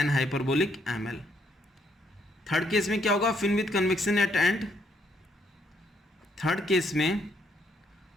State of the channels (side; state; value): both; normal; correlation 0.72